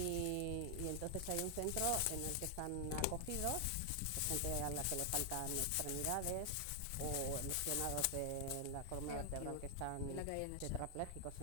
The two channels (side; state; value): both; different; correlation 0.00